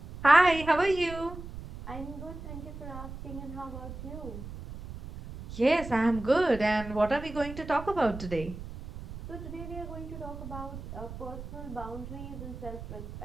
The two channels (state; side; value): noise; right; rumble, 11 dB below the sound